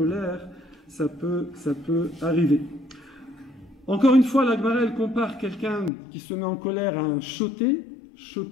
ça peut arriver. Encore une fois, la Gemara, elle compare quelqu'un qui se met en colère à un choté,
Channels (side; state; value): right; drops out; at 5.9 s